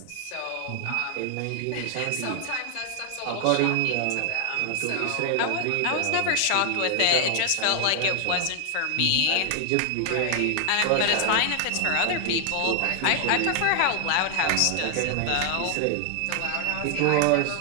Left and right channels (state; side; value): different; both; correlation 0.00